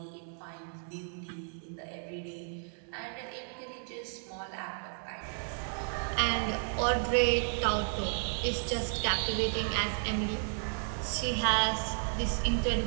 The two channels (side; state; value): left; silent; 56 dB below the other